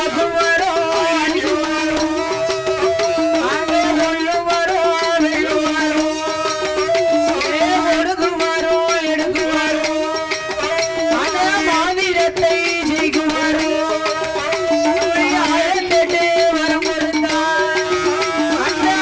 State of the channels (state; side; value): identical; both; correlation 1.00